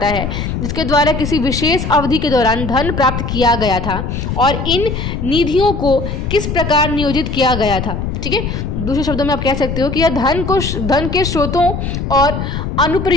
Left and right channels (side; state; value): left; noise; rumble, 4 dB below the sound